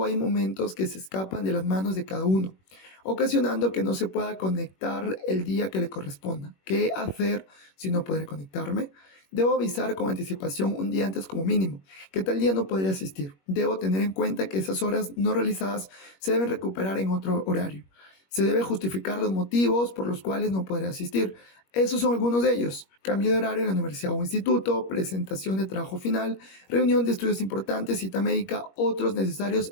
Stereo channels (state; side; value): late; right; 21 ms